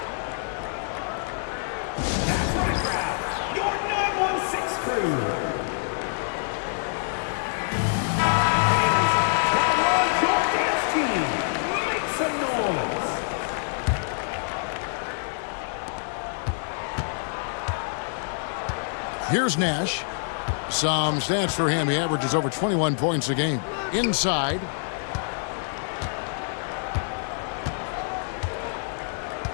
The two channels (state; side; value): silent; right; 61 dB below the other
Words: Your 916 crew. Here's Nash. Some stats for him. He averages over 21 points a game. Inside.